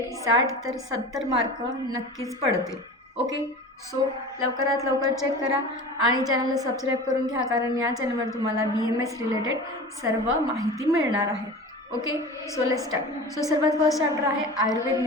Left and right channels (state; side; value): normal; both; correlation 0.35